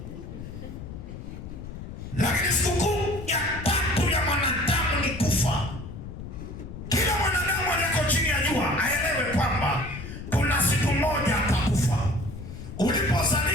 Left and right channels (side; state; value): left; noise; rumble, 10 dB below the sound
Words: Lakini sikukuu ya 3 ya mwanadamu ni kufa. Kila mwanadamu aliyeko chini ya jua aelewe kwamba kuna siku moja atakufa.